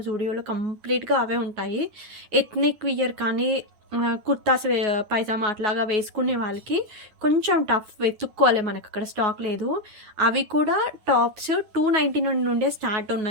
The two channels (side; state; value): left; late; 9.6 ms